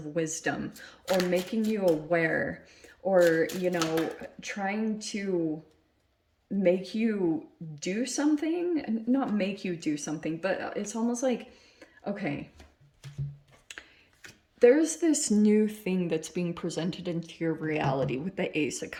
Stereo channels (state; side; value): identical; both; correlation 1.00